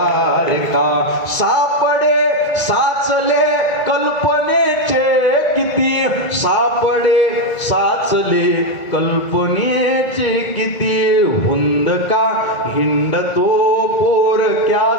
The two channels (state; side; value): late; right; 1.9 ms